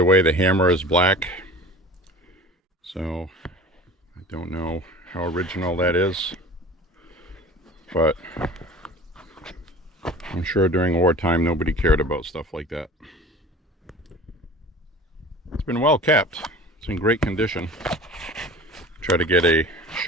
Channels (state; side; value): normal; both; correlation 0.40